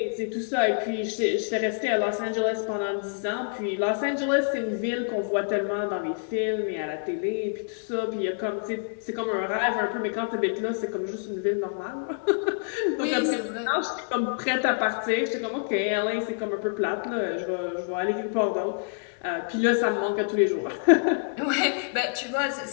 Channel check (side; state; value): right; silent; digital silence